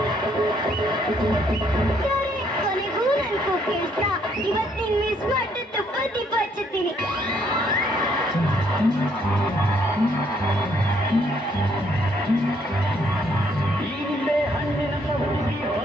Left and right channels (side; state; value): both; normal; correlation 0.68